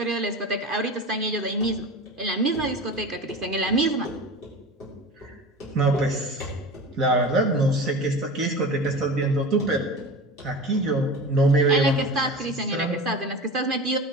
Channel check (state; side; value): normal; both; correlation 0.32